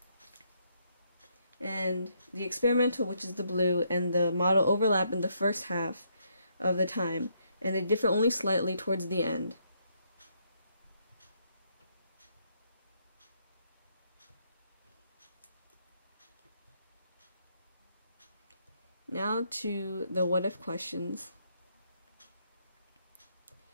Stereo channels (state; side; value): inverted; both; correlation -0.74